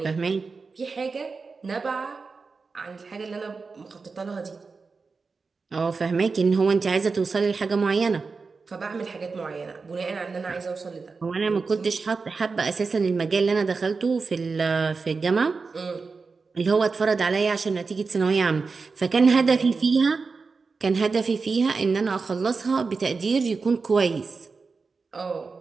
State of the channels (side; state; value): left; quieter; 4.5 dB